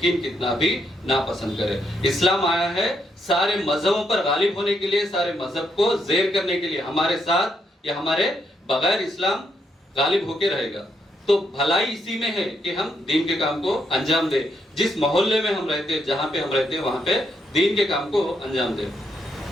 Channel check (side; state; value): both; normal; correlation 0.77